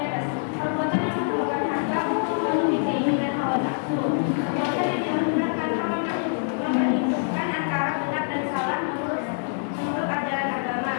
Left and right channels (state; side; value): silent; right; 62 dB below the other